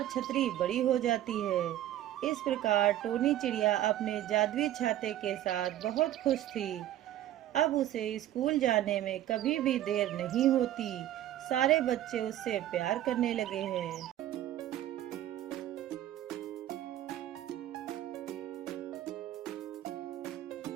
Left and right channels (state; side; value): quieter; left; 12.9 dB